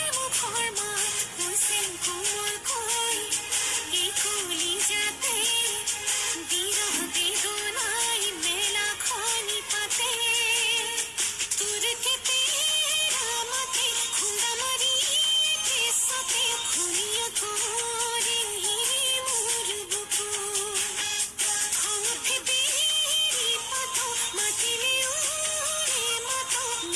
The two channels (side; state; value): both; identical; correlation 1.00